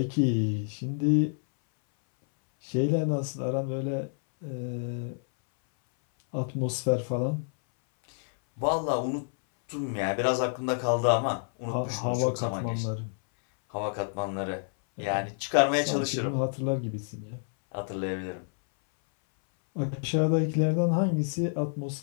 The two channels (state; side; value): silent; right; 59 dB below the other